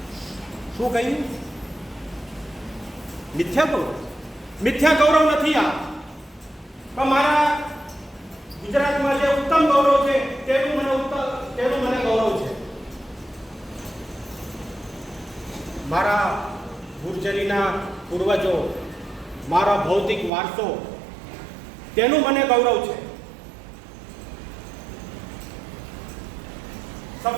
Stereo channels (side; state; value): left; drops out; at 20.3 s